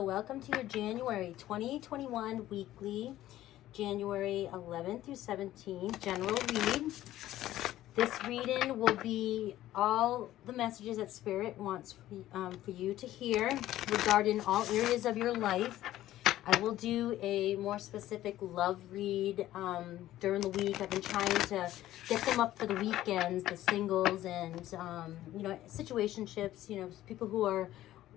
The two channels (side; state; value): right; quieter; 14.1 dB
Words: Welcome to your January 2021 weekly, January 11th through 17th general read. This reading will be all the messages that Spirit wants for you to hear regarding all areas of your life. I will do a more specific love read during the week. I've been trying to get them up for the weekends, the singles and, situationships, people who are